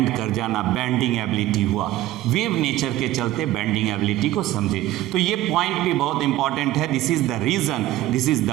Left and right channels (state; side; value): quieter; left; 15.0 dB